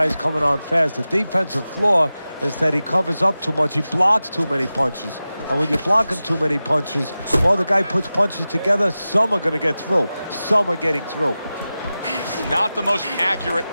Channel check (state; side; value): inverted; both; correlation -0.95